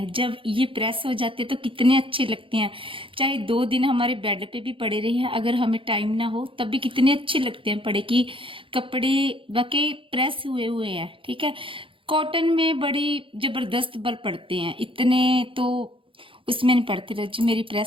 जब ये प्रेस हो जाते हैं तो कितने अच्छे लगते हैं। चाहे 2 दिन हमारे बेड पे भी पड़े रहे हैं, अगर हमें टाइम ना हो तब भी कितने अच्छे लगते हैं पड़े कि कपड़े वाकई प्रेस हुए हुए हैं। ठीक है, कॉटन में बड़ी जबरदस्त बल पड़ते हैं, इतने तो उसमें नहीं पड़ते। रजी मेरी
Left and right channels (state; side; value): late; left; 0.25 ms